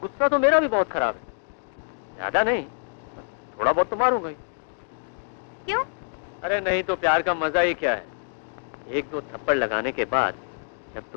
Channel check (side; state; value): right; silent; digital silence